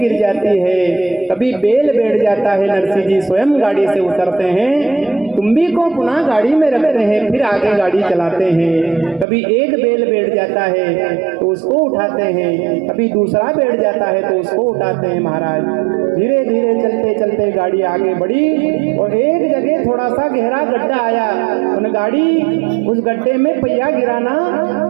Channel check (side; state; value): left; drops out; at 9.2 s